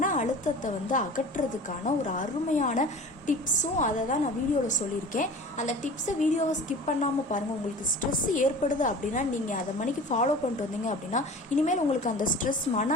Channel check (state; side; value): normal; both; correlation 0.39